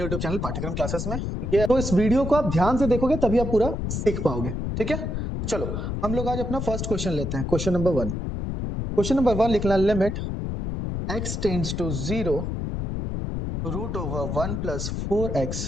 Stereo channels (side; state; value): left; noise; rumble, 3 dB below the sound